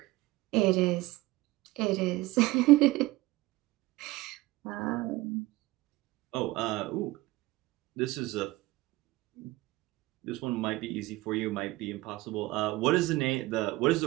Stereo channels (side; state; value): left; quieter; 19.6 dB